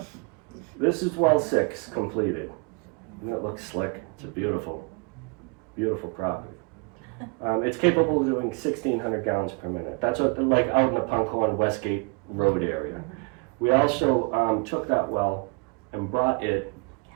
This is well 6 completed. And it looks slick. It's a beautiful, beautiful property. It's capable of doing 1,600 gallons per minute. That's what, like out in the Punkhorn Westgate Road area. We also took that well and brought it,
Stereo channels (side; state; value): left; quieter; 31.6 dB